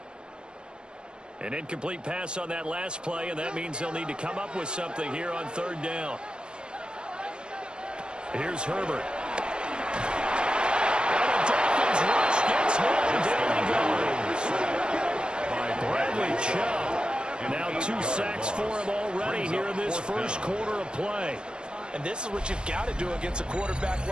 An incomplete pass on that last play, and that means they'll need to come up with something here on third down. Here's Herbert. And the Dolphins rush gets home. Down he goes. By Bradley Chubb. Now 2 sacks for him already here in this first quarter of play. And this is what you've got to do against a quarterback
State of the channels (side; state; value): left; late; 0.053 ms